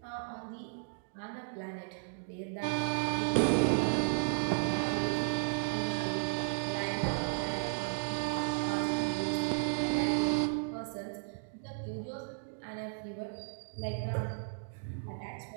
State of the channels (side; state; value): left; silent; digital silence